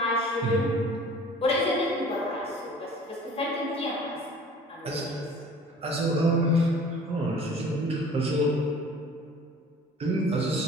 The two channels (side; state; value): both; normal; correlation 0.47